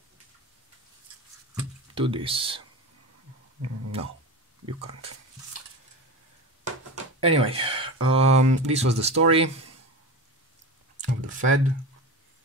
to this. No, you can't. Anyway, this was the story of the Fed.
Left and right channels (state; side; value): normal; both; correlation 0.26